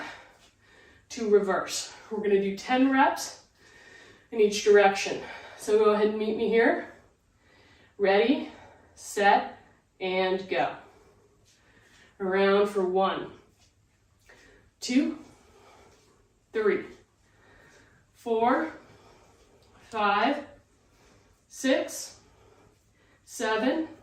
to reverse. We're going to do 10 reps in each direction. So go ahead and meet me here. Ready, set, and go. Around for 1, 2, 3, 4, 5, 6, 7,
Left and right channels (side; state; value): both; identical; correlation 1.00